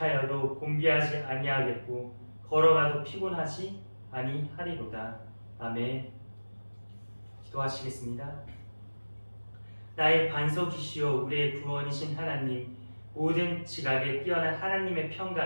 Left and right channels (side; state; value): both; inverted; correlation -1.00